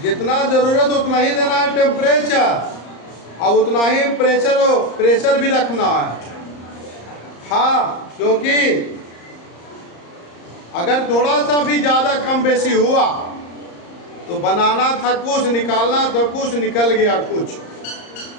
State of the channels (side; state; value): right; late; 34 ms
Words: जितना जरूरत उतना ही देना है टेम्परेचर, और उतना ही प्रेशर भी रखना है। हाँ, क्योंकि अगर थोड़ा सा भी ज़्यादा कम बेसी हुआ तो बनाना था कुछ, निकालना था कुछ, निकल गया कुछ।